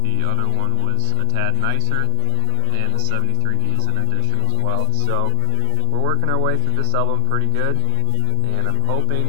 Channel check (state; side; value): different; both; correlation 0.01